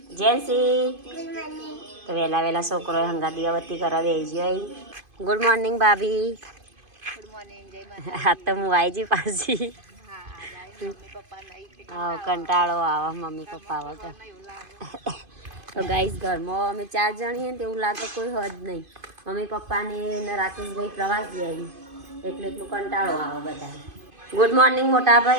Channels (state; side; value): late; left; 2.5 ms